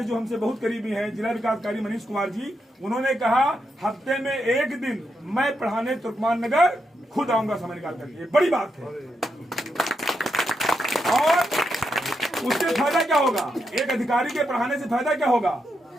जो हमसे बहुत करीबी हैं, जिला विकास अधिकारी मनीष कुमार जी, उन्होंने कहा हफ्ते में 1 दिन मैं पढ़ाने तुर्कमान नगर खुद आऊंगा समय निकाल करके। बड़ी बात है। और उससे फायदा क्या होगा, एक अधिकारी के पढ़ाने से फायदा क्या होगा?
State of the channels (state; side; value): normal; both; correlation 0.83